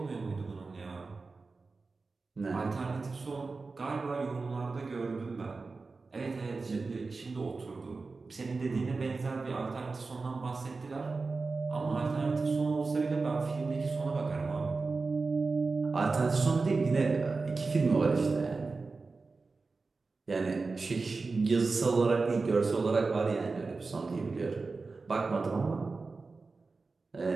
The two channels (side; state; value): left; quieter; 4.0 dB